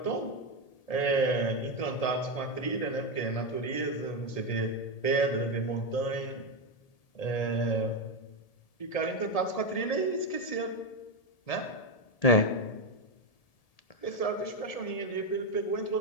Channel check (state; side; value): late; right; 1.8 ms